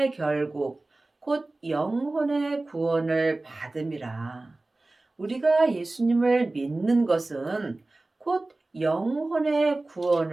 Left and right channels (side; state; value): left; quieter; 3.0 dB